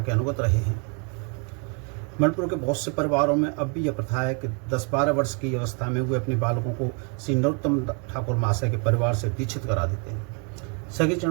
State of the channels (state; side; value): quieter; left; 36.5 dB